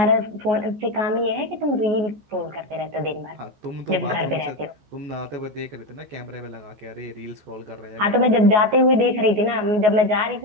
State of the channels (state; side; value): late; left; 14 ms